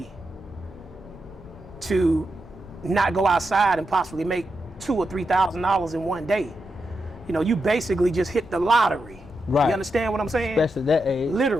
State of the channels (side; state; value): left; noise; rumble, 20 dB below the sound